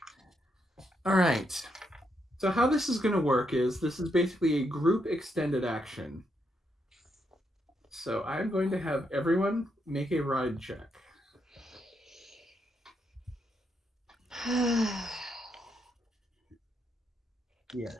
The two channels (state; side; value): normal; both; correlation 0.79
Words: All right. So how this is going to work is this is basically a group extended action. So I'm going to have everyone make a ride check. Yeah.